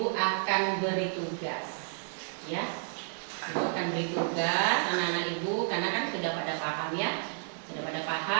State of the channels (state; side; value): silent; left; digital silence